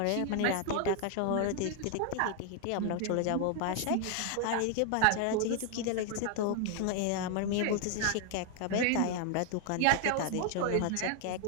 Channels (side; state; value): both; different; correlation 0.00